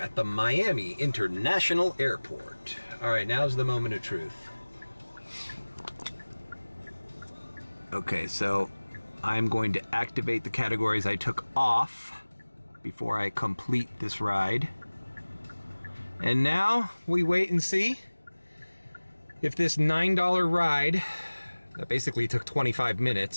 the Miami International Airport. All right, now's the moment of truth. Okay, so I'm going to activate the categories I took off before I complete this ride. And now we wait and see if this $9 ride that basically took 25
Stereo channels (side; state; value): both; inverted; correlation -1.00